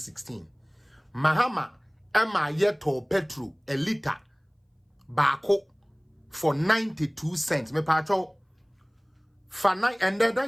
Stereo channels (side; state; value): both; identical; correlation 1.00